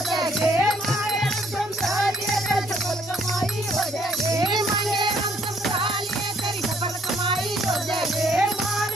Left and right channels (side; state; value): both; normal; correlation 0.66